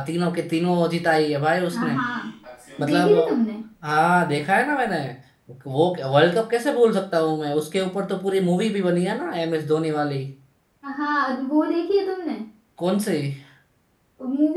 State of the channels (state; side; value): identical; both; correlation 1.00